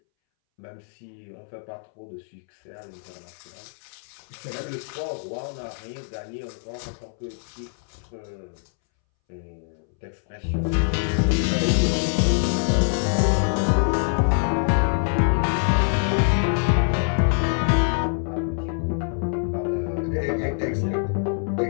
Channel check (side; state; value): right; silent; 62 dB below the other